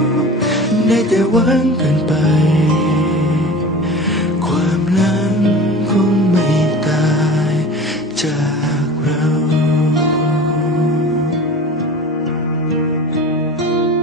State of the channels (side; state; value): both; normal; correlation 0.37